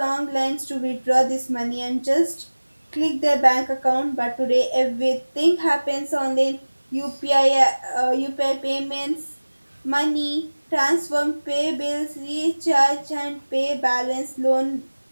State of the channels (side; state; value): both; inverted; correlation -1.00